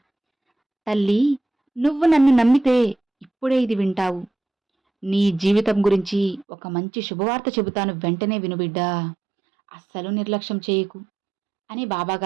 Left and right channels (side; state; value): left; drops out; at 6.5 s